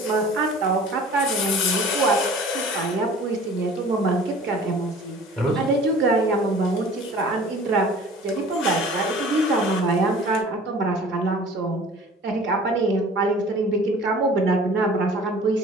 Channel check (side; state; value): both; normal; correlation 0.45